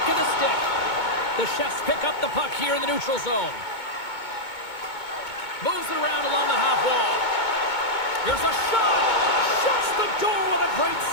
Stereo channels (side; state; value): right; late; 2.2 ms